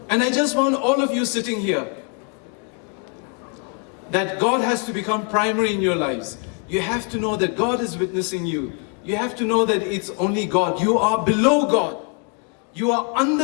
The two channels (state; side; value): quieter; right; 38.0 dB